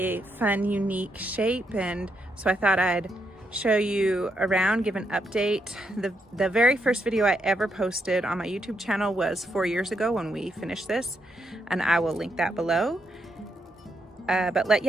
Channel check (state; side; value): normal; both; correlation 0.80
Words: fun, unique shape. And so I thought I'd show you around, give an update. The very first video I ever posted on my YouTube channel was 4 years ago when we finished this, and I will link that below.